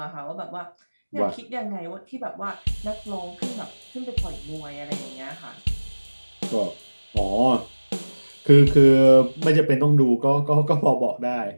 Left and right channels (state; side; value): inverted; both; correlation -1.00